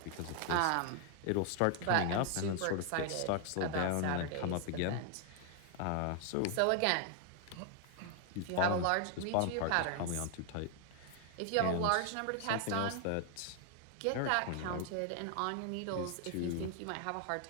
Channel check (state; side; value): different; both; correlation 0.00